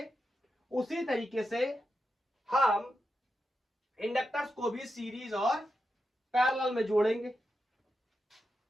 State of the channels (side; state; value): both; normal; correlation 0.88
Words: उसी तरीके से हम इंडक्टर्स को भी सीरीज और पैरेलल में जोड़ेंगे।